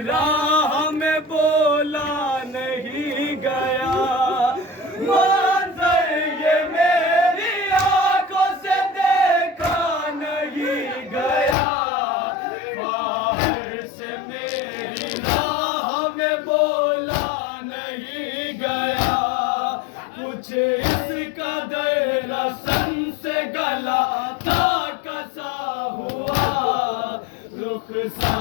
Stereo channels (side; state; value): right; drops out; at 11.6 s